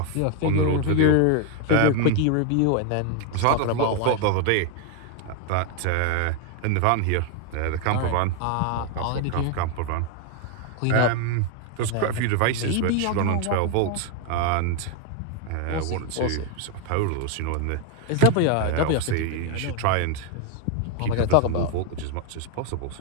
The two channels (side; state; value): both; different; correlation 0.01